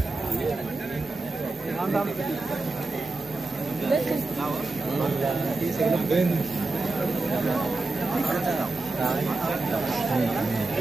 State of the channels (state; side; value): quieter; left; 3.3 dB